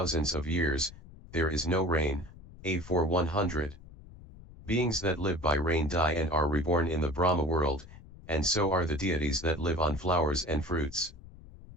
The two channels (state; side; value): noise; left; rumble, 19 dB below the sound